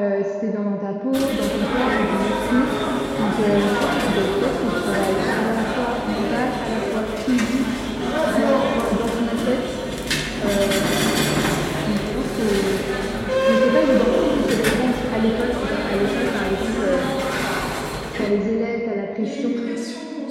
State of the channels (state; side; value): identical; both; correlation 1.00